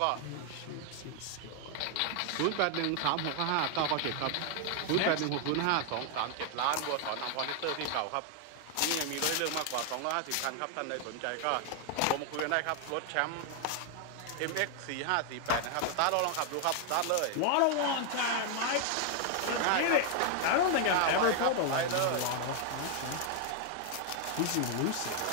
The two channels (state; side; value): different; both; correlation 0.00